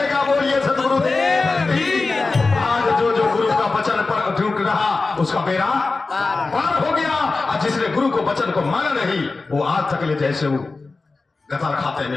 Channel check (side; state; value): right; quieter; 3.8 dB